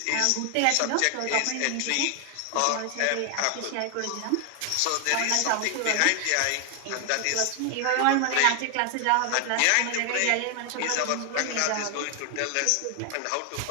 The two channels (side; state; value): both; different; correlation 0.00